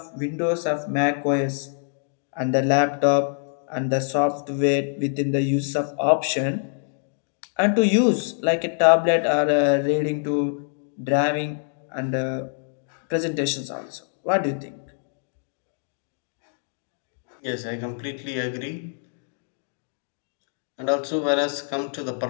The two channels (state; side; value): silent; right; 62 dB below the other